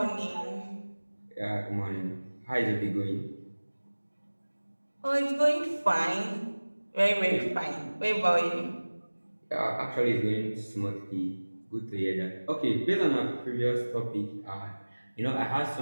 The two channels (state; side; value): inverted; both; correlation -1.00